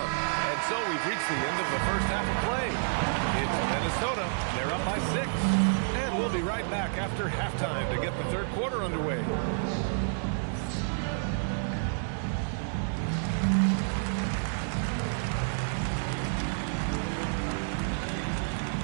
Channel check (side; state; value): left; silent; digital silence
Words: And so we've reached the end of the first half of play. It's Minnesota. They're up by 6. And we'll be right back after halftime to get the third quarter underway.